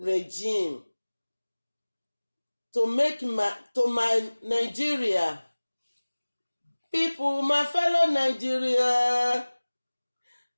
To my Nigeria people, my fellow Nigeria,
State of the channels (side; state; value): both; inverted; correlation -1.00